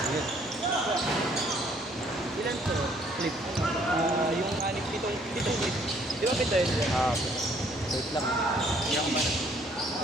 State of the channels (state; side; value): normal; both; correlation 0.63